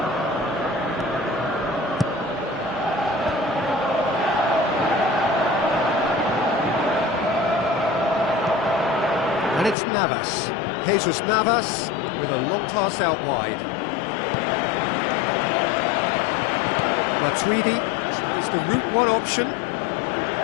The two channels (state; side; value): drops out; right; at 9.8 s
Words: And it's Navas. Jesus Navas with a long pass out wide. Matuidi chose the route one option.